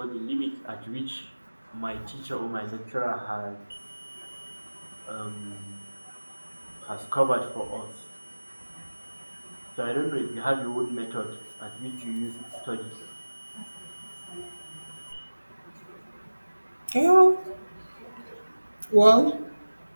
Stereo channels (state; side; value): inverted; both; correlation -1.00